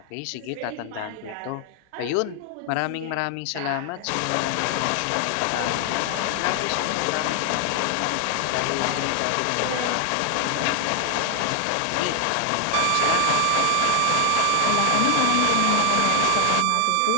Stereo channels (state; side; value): different; both; correlation 0.00